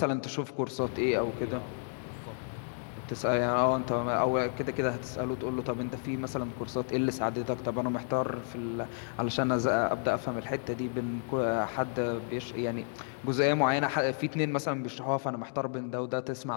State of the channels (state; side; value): silent; right; 57 dB below the other